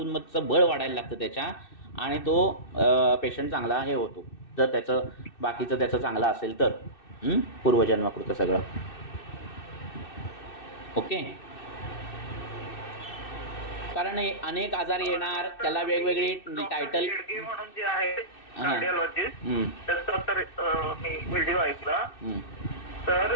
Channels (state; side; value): late; right; 2.6 ms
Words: बळ वाढायला लागतं त्याच्या आणि तो पेशंट चांगला हे होतो. जर त्याचं बाकीचं त्याचं चांगलं असेल तर पूर्वजन्मकृत सगळं. ओके. कारण अनेक आजार येणार, त्याला वेगवेगळी टायटल म्हणून जे आहे कार्डिओलॉजिस्ट, त्याचा तर मी व्हिडिओ ऐकला. तर